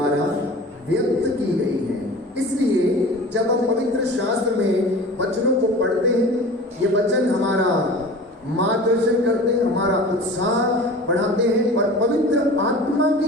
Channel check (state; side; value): normal; both; correlation 0.38